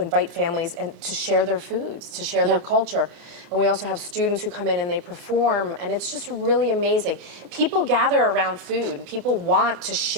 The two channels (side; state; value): left; late; 30 ms